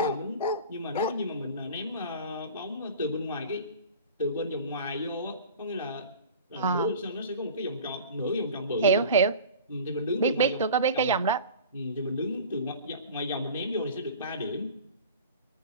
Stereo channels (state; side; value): inverted; both; correlation -0.39